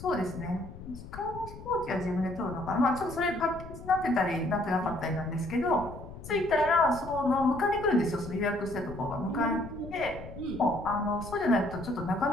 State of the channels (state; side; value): noise; left; rumble, 13 dB below the sound